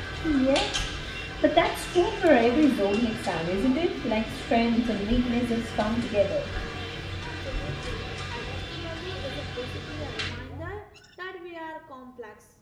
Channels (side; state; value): both; identical; correlation 1.00